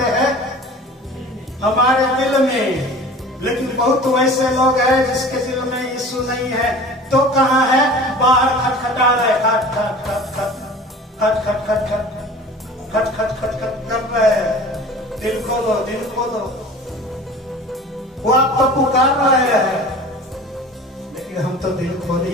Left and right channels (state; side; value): normal; both; correlation 0.41